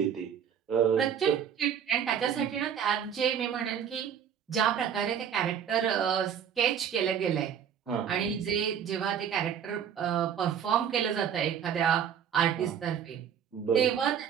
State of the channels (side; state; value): left; quieter; 8.4 dB